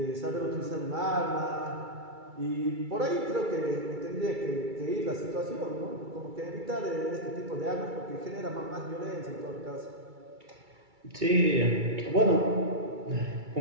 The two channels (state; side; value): late; left; 2.3 ms